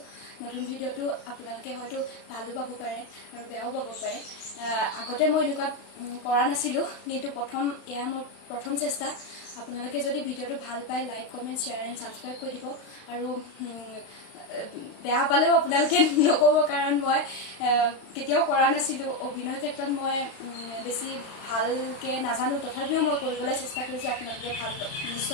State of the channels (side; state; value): right; late; 35 ms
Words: নতুন ভিডিঅ'টো আপোনালোকে হয়তো ভালো পাব পাৰে আৰু বেয়াও পাব পাৰে আগতে মই এনেকুৱা কৰা নাছিলোঁ কিন্তু এয়া মোৰ প্ৰথম চেষ্টা আপোনালোকে যদি ভিডিঅ'টো ভাল পায় like comment share and subscribe কৰি দিব আৰু বেয়া পালেও আপোনালোকে নক'ব কাৰণ মই কেতিয়াও কৰা নাছিলোঁ অভিনয় ক্ষেত্ৰত মই বেছি ভালকৈ নাজানো তথাপিও মই কৰিবলৈ চেষ্টা কৰিছোঁ আপোনালোকে